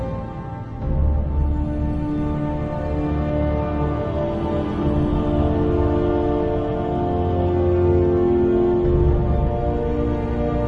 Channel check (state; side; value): identical; both; correlation 1.00